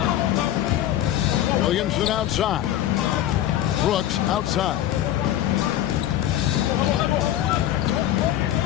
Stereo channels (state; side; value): quieter; right; 12.5 dB